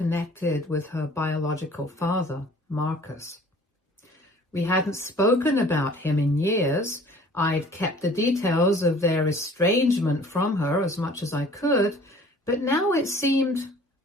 with her biological father, Marcus. We hadn't spoken about him in years. I'd kept the details of their estrangement from her as much as I could, but now it seemed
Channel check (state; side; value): normal; both; correlation 0.51